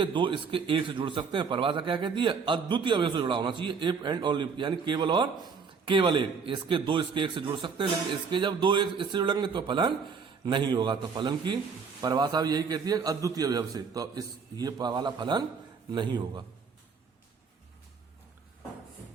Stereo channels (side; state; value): left; quieter; 5.6 dB